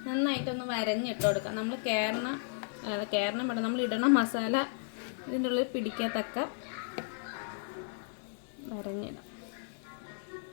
നന്നായിട്ടൊന്ന് വരഞ്ഞിട്ട് കൊടുക്കാം. നമ്മൾ കേരളം വേണം, നമ്മൾ ഇടണ മസാല ഇതിൻ്റെ ഉള്ളിൽ പിടിക്കത്തക്ക വരഞ്ഞിടാം.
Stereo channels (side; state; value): right; silent; digital silence